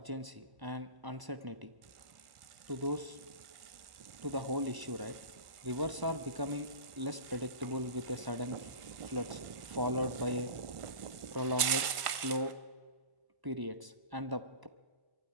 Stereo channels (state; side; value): late; left; 1.5 ms